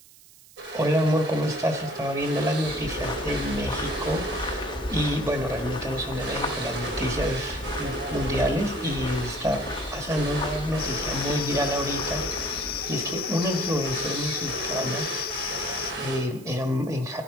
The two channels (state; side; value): noise; right; hiss, 23 dB below the sound